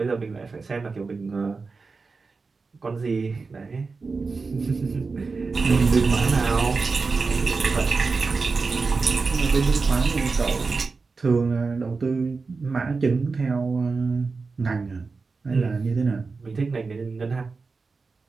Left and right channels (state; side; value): quieter; left; 4.3 dB